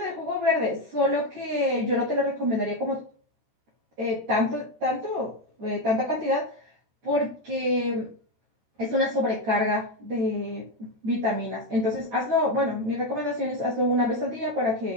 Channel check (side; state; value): left; late; 13 ms